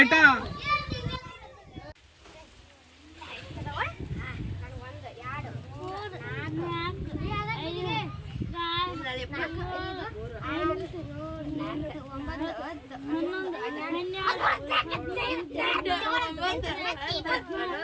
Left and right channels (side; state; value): both; identical; correlation 1.00